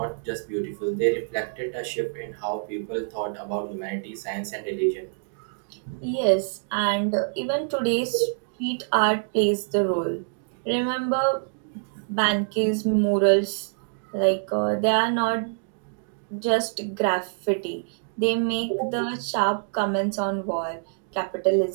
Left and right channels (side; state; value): left; silent; digital silence